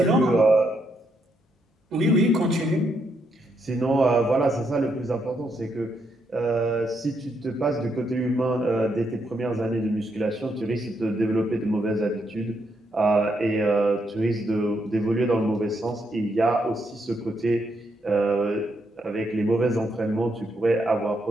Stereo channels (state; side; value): normal; both; correlation 0.77